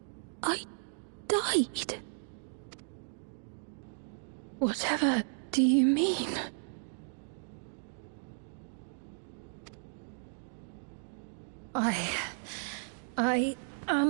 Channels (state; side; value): silent; left; digital silence